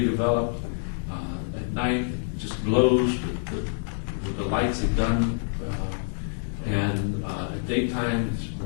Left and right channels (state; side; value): silent; right; digital silence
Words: At night, just glows with the lights they've done. And at daytime, it's